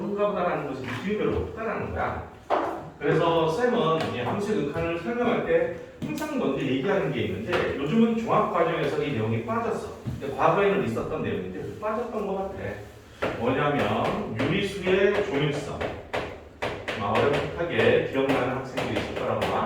보다라는 것을 느낌이 별로 없다라는 거야. 그래서 쌤은 이 함수의 극한을 설명할 때 항상 먼저 얘기하는 게 있는데 요즘은 종합과정에서 이 내용이 빠졌어. 과거에는 있었던 내용인데 빠졌던 것 같아. 뭐냐면 유리수의 조밀성. 어렵게 기억나는 학생들이 있을 거라고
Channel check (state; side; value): identical; both; correlation 1.00